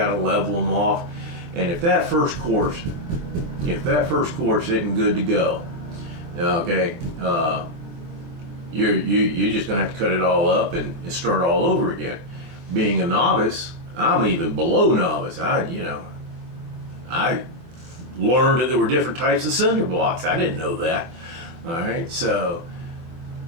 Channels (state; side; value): late; left; 24 ms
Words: to level them off. And if that first course isn't good to go, okay, you're just going to have to cut it all up and start all over again. Being a novice, I'm even below novice. I learned that there were different types of cinder blocks. I didn't know that. All right, so